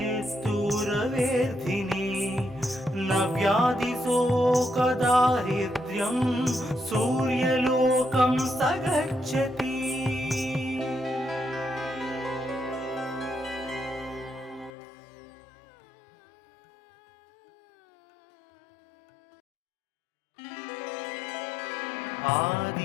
न व्याधिशोकदारिद्र्यं सूर्यलोकं स गच्छति।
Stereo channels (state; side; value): drops out; right; at 14.7 s